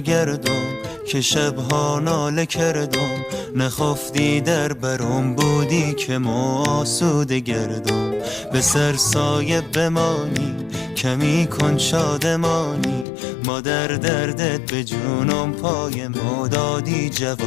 که شبها ناله کردم، نخفتی در برم بودی که ما آسوده گردم. به سر سایه بمانی کمی کن شادمانی، ما در دردت به جونم پای ما دادی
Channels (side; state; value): right; drops out; at 13.1 s